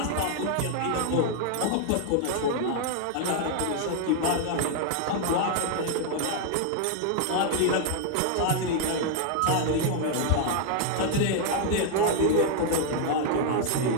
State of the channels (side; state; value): both; different; correlation 0.00